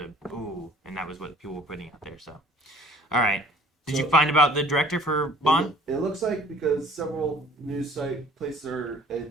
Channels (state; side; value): normal; both; correlation 0.52